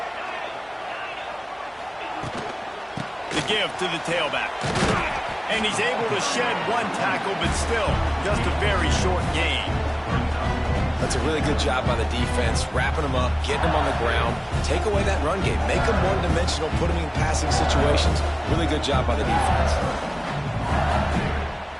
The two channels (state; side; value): identical; both; correlation 1.00